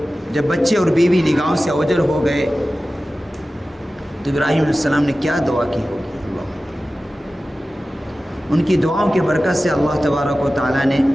جب بچے اور بیوی نگاہوں سے اوجھل ہو گئے تو ابراہیم علیہ السلام نے کیا دعا کی ہوگی؟ ان کی دعاؤں کی برکت سے اللہ تبارک و تعالیٰ نے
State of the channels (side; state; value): both; normal; correlation 0.95